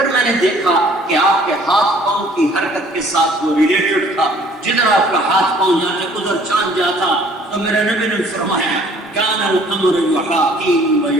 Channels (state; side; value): normal; both; correlation 0.56